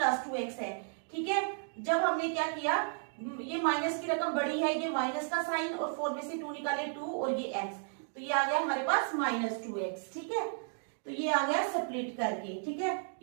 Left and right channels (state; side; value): silent; left; 55 dB below the other